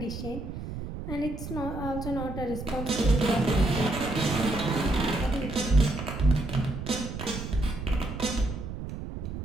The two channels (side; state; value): right; noise; rumble, 7 dB below the sound